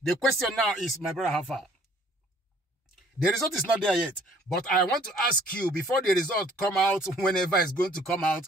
The question now is, my brother, how far? The result is not there yet, but I want to ask you, before the result come out, whenever it's going to come out,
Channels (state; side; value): normal; both; correlation 0.57